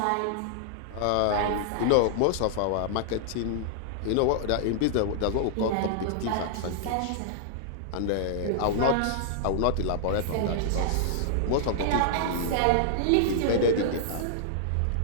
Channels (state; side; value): different; both; correlation -0.01